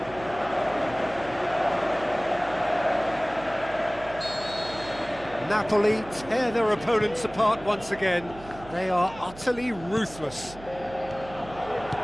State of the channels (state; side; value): noise; right; hum, 17 dB below the sound